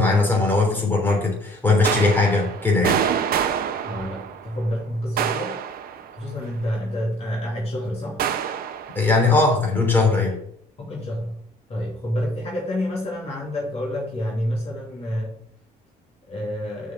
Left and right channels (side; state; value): both; normal; correlation 0.56